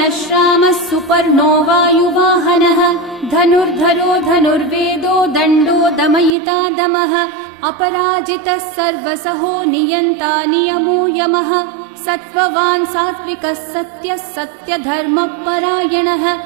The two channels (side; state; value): left; drops out; at 6.4 s